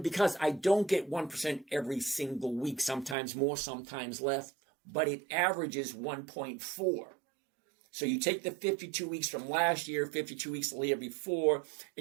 because I don't get 1% every single week, sometimes more, sometimes less, but it averages 1.4. So you take the 52 weeks from last year, 52 weeks the year before,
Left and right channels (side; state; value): left; drops out; at 3.2 s